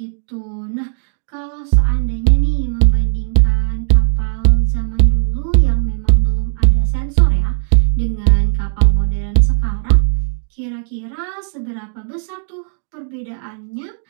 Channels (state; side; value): silent; left; 69 dB below the other